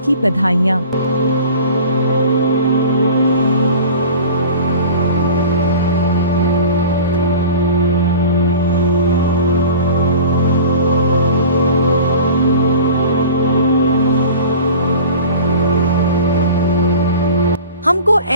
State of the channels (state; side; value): inverted; both; correlation -0.40